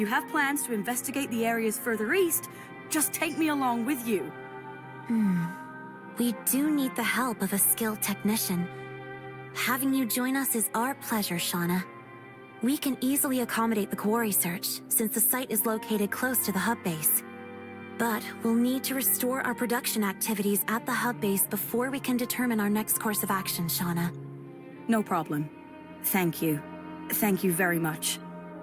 have plans to investigate the areas further east, just take me along with you. We do need the help of a skilled technician. Having you join us is our pleasure, Shauna. We can easily accommodate the quarry search, since the site is located close to the hub base. But we'll need to restore our production activities at the hub base before we can determine our next course of action, Shauna. No problem. Thank you. Thank you very much.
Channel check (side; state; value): both; identical; correlation 1.00